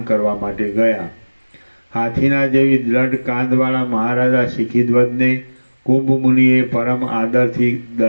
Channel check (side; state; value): both; inverted; correlation -1.00